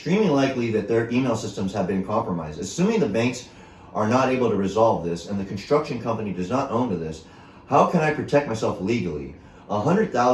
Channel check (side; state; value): both; identical; correlation 1.00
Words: likely that their email systems have been compromised. Assuming the banks are not able to resolve this and the construction company does not own to this, how can I protect myself legally?